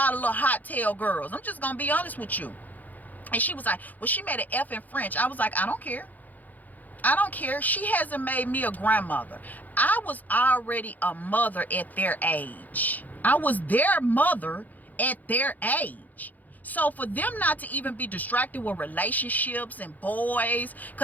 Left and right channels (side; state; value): right; late; 0.082 ms